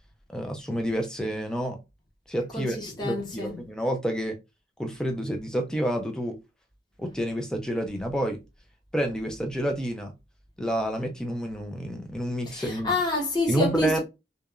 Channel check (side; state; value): both; normal; correlation 0.72